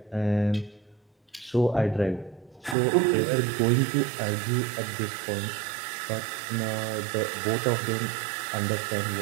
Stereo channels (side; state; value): left; drops out; at 2.8 s